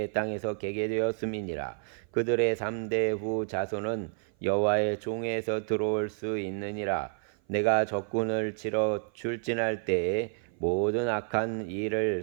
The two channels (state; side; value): silent; left; 55 dB below the other